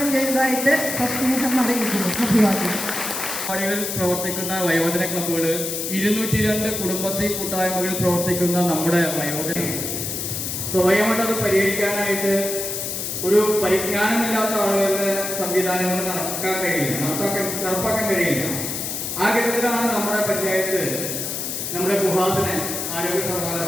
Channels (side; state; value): left; noise; hiss, 4 dB below the sound